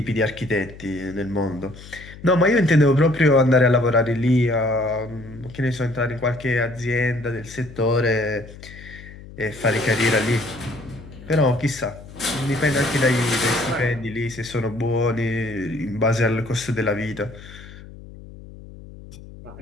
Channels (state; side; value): noise; left; hum, 17 dB below the sound